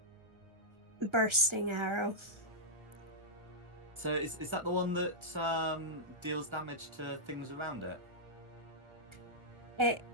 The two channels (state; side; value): late; left; 1.5 ms